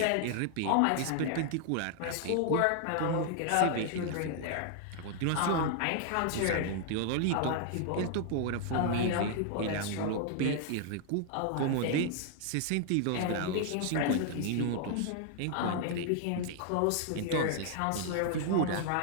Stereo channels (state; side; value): different; both; correlation 0.00